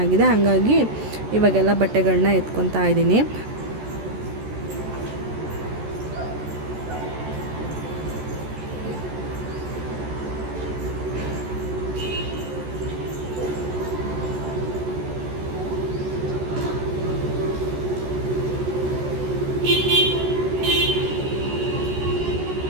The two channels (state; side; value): late; left; 14 ms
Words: ಹಾಗಾಗಿ ಇವಾಗೆಲ್ಲ ಬಟ್ಟೆಗಳನ್ನ ಎತ್ಕೊತಾ ಇದ್ದೀನಿ.